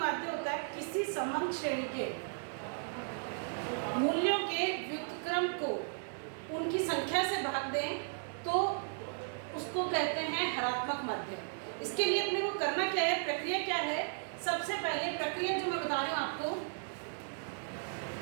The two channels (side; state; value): left; silent; digital silence